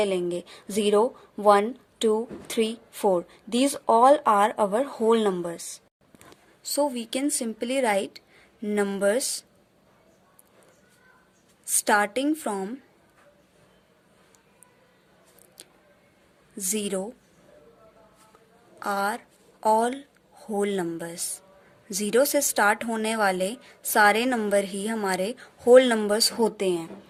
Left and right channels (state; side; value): identical; both; correlation 1.00